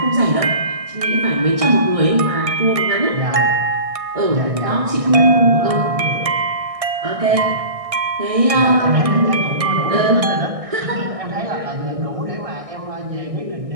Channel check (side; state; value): left; late; 1.6 ms